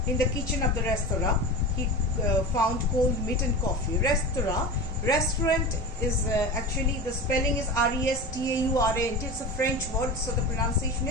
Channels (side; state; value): both; normal; correlation 0.29